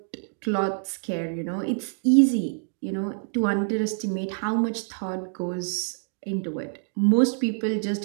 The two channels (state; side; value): silent; left; 61 dB below the other